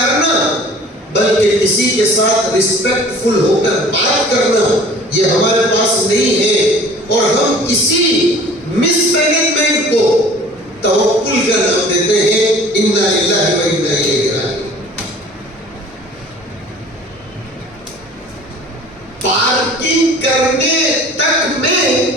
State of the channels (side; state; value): both; normal; correlation 0.47